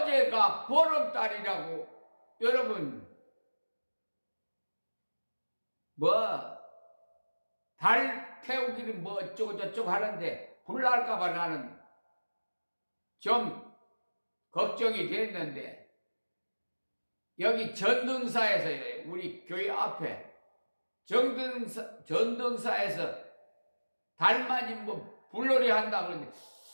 보름달이라고 여러분 달 태우기는 어쩌고 저쩌고 하는데 불 날까봐 나는 좀 걱정이 됐는데 여기 전등사에서 우리 교회 앞에 전등사에서 달맞이 뭐 불놀이 한다 그러는데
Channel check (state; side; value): inverted; both; correlation -1.00